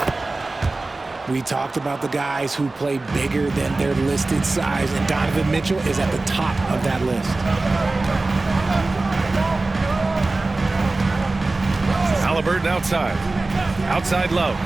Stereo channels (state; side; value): quieter; left; 3.3 dB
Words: We talked about the guys who play bigger than their listed size, and Donovan Mitchell is at the top of that list. Halliburton outside. Outside Love.